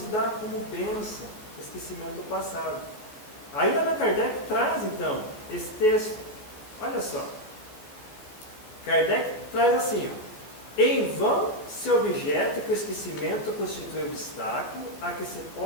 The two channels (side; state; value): right; late; 14 ms